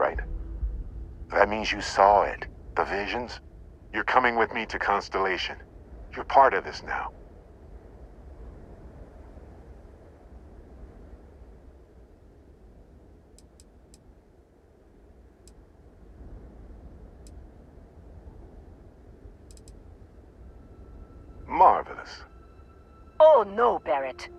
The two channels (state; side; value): identical; both; correlation 1.00